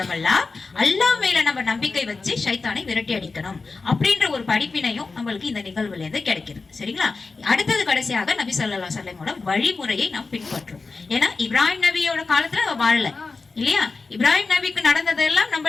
அல்லாஹ் மேல நம்ம நம்பிக்கை வச்சு ஷைத்தானை விரட்டி அடிக்கணும் அப்படின்ற ஒரு படிப்பினையும் நம்மளுக்கு இந்த நிகழ்வுல இருந்து கிடைக்குது. சரிங்களா? அடுத்தது கடைசியாக நபி ஸல்லல்லாஹு அலைஹி வஸல்லமோட வழிமுறையை நாம் பின்பற்றோம். ஏன்னா இப்ராஹிம் நபியோட காலத்துல வாழல இல்லையா? இப்ராஹிம் நபிக்கு நடந்ததெல்லாம்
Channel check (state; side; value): quieter; right; 4.1 dB